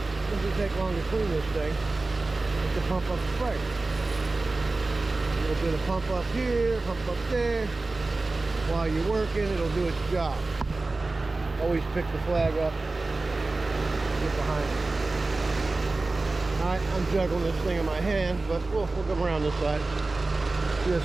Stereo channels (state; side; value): quieter; left; 3.3 dB